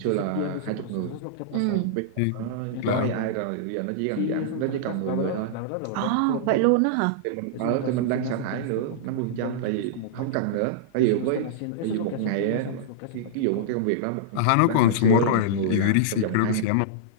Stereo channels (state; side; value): different; both; correlation -0.02